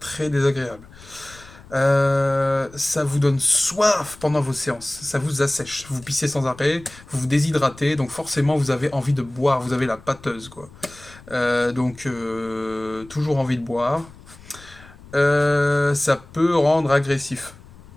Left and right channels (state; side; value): noise; left; rumble, 21 dB below the sound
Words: désagréable. Ça vous donne soif pendant vos séances, ça vous assèche. Vous pissez sans arrêt, vous vous déshydratez, donc forcément vous avez envie de boire, vous avez la pâteuse quoi. Toujours envie de boire. Ça peut rendre agressif,